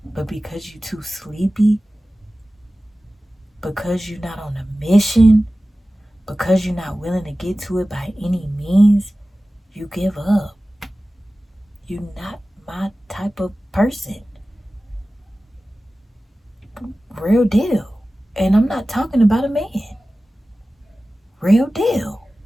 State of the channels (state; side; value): normal; both; correlation 0.96